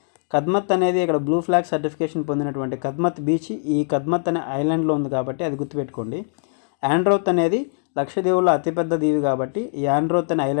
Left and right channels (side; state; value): right; silent; digital silence